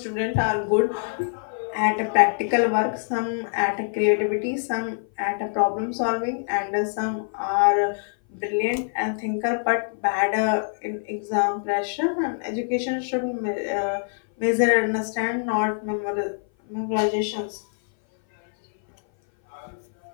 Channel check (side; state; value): right; silent; 58 dB below the other